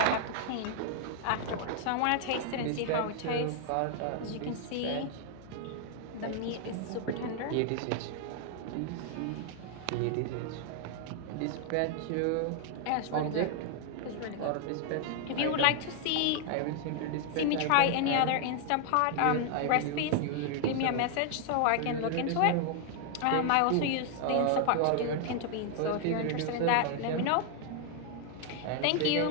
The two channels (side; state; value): both; different; correlation 0.00